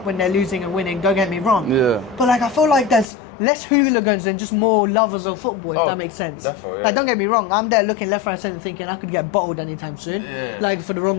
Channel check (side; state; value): right; drops out; at 3.1 s